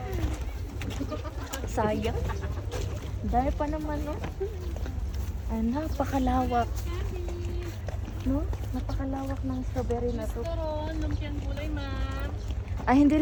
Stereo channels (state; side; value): identical; both; correlation 1.00